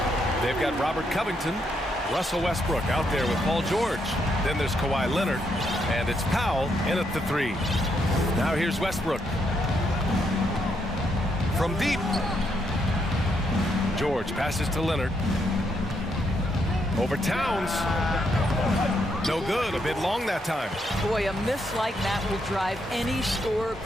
They've got Robert Covington, Russell Westbrook out there with Paul George. Then there's Kawhi Leonard, and it's Powell in at the 3. Now here's Westbrook. From deep. George passes to Leonard. Over Towns. No good, a bit long that time. Boy, a miss like that will drive any scorer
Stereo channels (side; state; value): both; normal; correlation 0.77